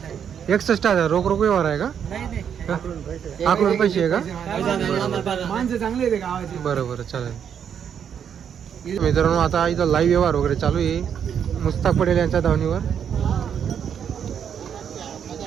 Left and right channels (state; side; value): quieter; left; 8.2 dB